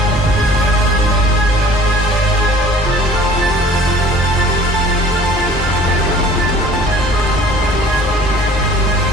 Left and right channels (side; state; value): both; normal; correlation 0.50